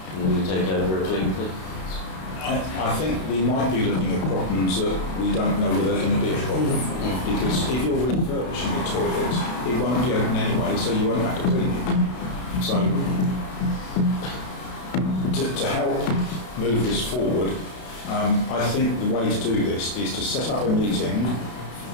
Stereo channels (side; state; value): right; late; 32 ms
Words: And then we take over a clean thing. I think we might be looking at problems that we don't know whether they're going to be a problem. Because if you're refurbishing the toilet, it won't be open anyway, so you won't have to clean it. So, to help move this forward, I think the way to do this is to set up a meeting,